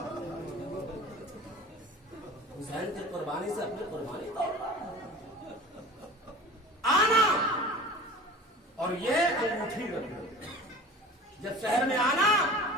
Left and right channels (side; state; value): both; normal; correlation 0.39